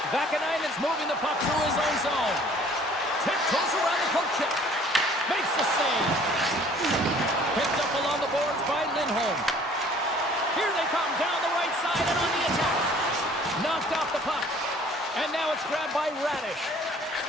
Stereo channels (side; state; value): both; normal; correlation 0.54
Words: Vakanainen's moving the puck through his own zone. Tiptoes around the poke check. Makes the save. Picked up along the boards by Lindholm. Here they come down the right side and on the attack. Knocked off the puck. And now it's grabbed by Radish.